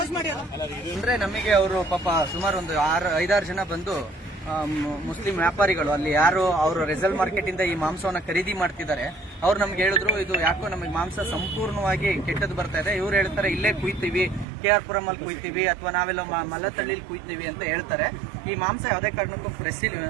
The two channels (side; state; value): left; drops out; at 14.5 s